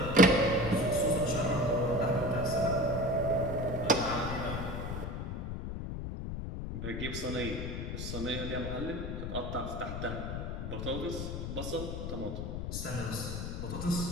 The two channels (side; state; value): left; noise; rumble, 4 dB below the sound